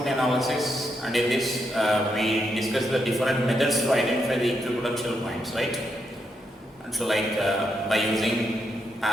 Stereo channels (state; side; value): normal; both; correlation 0.81